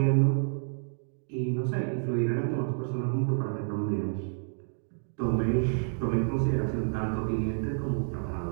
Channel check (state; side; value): silent; left; digital silence